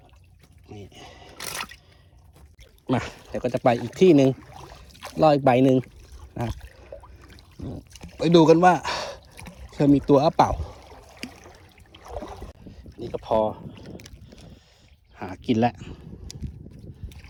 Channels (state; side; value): identical; both; correlation 1.00